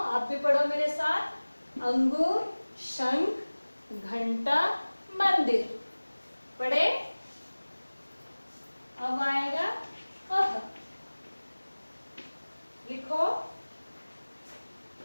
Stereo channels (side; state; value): both; inverted; correlation -1.00